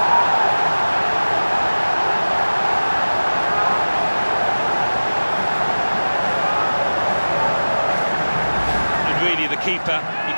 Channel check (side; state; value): both; inverted; correlation -1.00